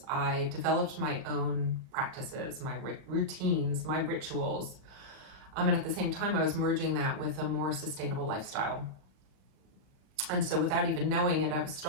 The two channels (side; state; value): left; late; 39 ms